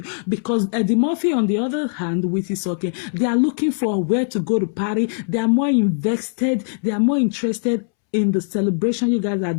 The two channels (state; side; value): silent; right; 65 dB below the other